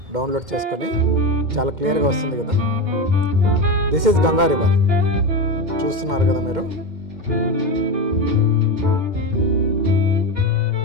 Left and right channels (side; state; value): left; late; 2.1 ms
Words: డౌన్లోడ్ చేసుకొని. చాలా క్లియర్గా వస్తుంది కదా. This is Ganga river. చూస్తున్నారు కదా మీరు.